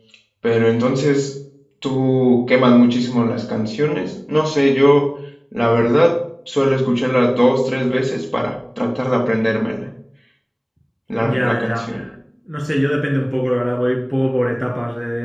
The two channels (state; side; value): identical; both; correlation 1.00